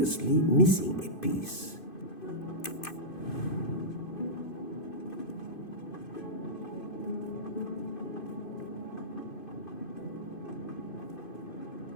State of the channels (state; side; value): late; right; 2.5 ms